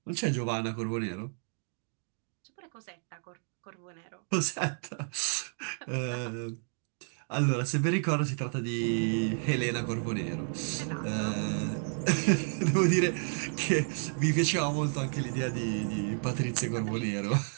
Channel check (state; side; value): silent; left; 57 dB below the other